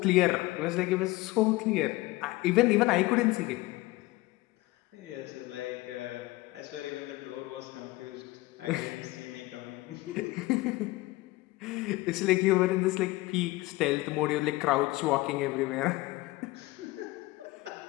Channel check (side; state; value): right; quieter; 19.8 dB